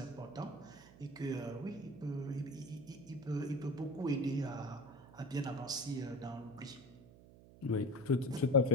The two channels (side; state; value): right; noise; hum, 20 dB below the sound